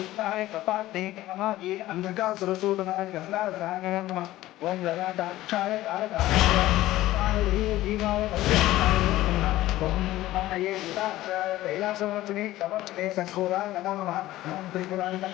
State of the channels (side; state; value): right; quieter; 15.8 dB